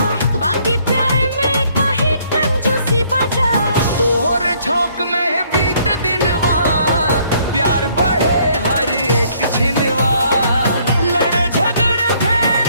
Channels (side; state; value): both; inverted; correlation -0.65